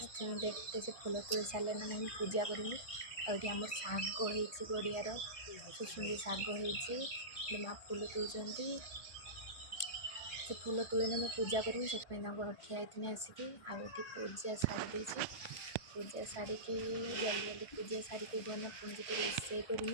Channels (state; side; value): late; right; 1.6 ms